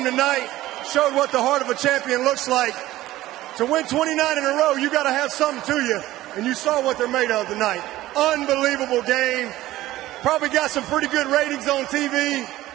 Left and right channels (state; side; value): quieter; left; 15.9 dB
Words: tonight showed what the heart of a champion looks like. To win 29 in a row, you got to have something to you. And you saw what they're made of tonight. Unbelievable game. Probably got some pretty good ratings on TV.